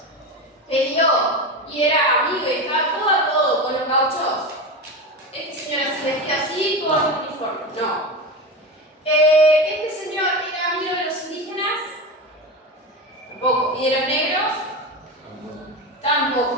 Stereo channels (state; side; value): normal; both; correlation 0.21